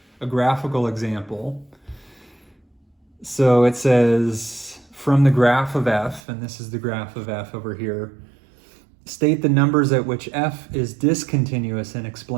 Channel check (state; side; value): drops out; left; at 6.2 s